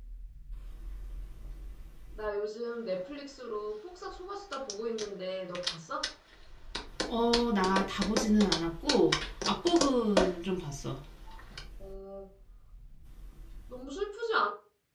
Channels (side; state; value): both; identical; correlation 1.00